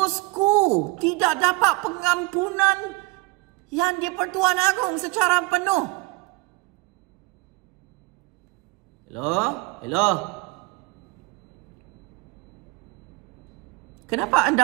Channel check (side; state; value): left; quieter; 24.4 dB